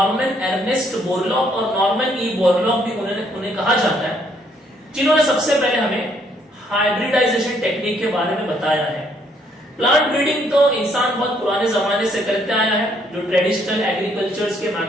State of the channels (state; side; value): normal; both; correlation 0.68